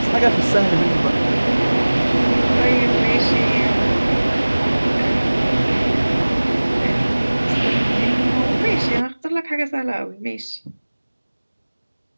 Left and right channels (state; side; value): inverted; both; correlation -1.00